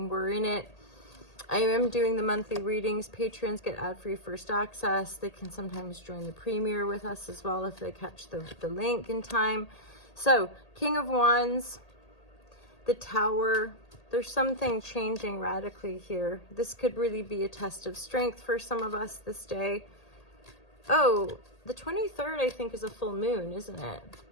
We're in it. I am doing the monthly readings. Patrons get ad-free first access. They can sometimes join the premiere with us as well if they catch the link in time. So, King of Wands, the Tower. There's something changing radically here. This could really be a test of strength for some of us this day. Oh, the 23rd, I think, is a full moon, isn't it?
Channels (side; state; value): right; late; 1.8 ms